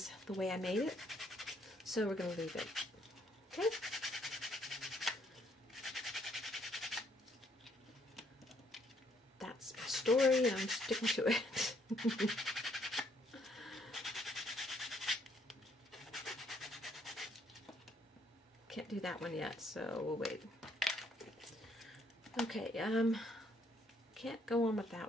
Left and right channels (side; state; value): both; normal; correlation 0.69